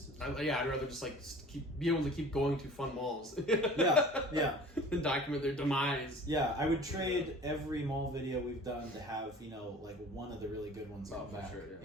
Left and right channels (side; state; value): both; normal; correlation 0.44